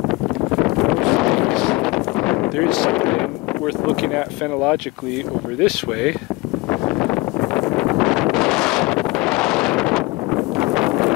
There is something worth looking at phenologically over this way.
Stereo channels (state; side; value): quieter; right; 23.1 dB